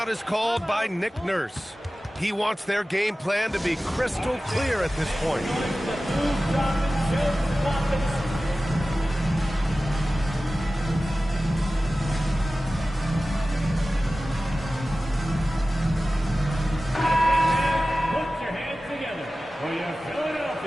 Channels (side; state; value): both; normal; correlation 0.96